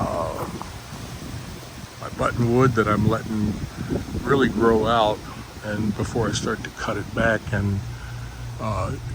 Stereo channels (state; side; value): identical; both; correlation 1.00